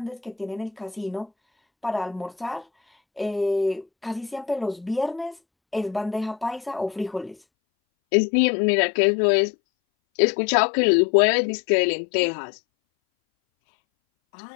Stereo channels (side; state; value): right; drops out; at 7.4 s